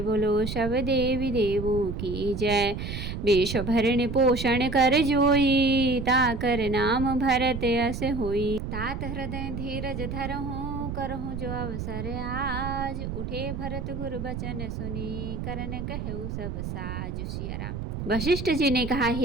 बोलो सब देवी देवों की जय। विश्व भरण पोषण कर जोई, ताकर नाम भरत यस होई। तात हृदय धीरज धरहूँ, करहूँ जो अवसर आज। उठे भरत गुर बचन सुनी, करन कहु सब साज। सिया राम। वशिष्ठ जी ने कहा,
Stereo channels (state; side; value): noise; right; rumble, 5 dB below the sound